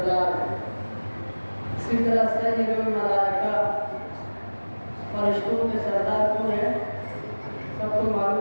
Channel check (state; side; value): inverted; both; correlation -1.00